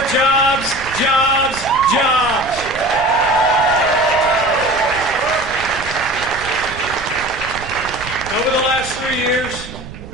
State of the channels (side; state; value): right; noise; rumble, 14 dB below the sound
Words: jobs, jobs, jobs. Over the last 3 years,